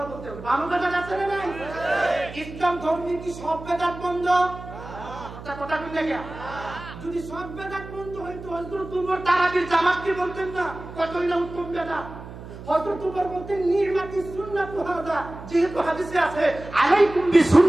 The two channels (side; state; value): right; noise; hum, 13 dB below the sound